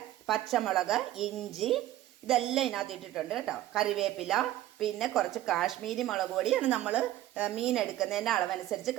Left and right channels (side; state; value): left; quieter; 14.1 dB